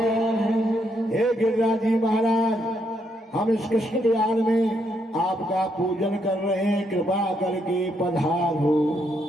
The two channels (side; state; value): both; normal; correlation 0.76